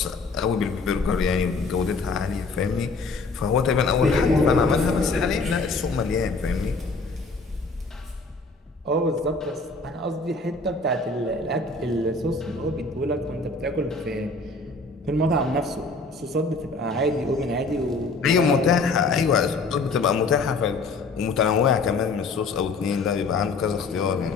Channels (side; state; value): right; quieter; 3.7 dB